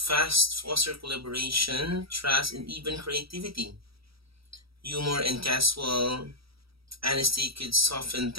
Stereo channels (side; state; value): left; late; 0.76 ms